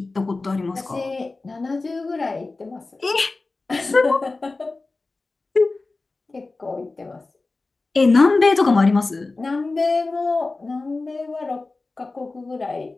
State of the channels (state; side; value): quieter; right; 3.5 dB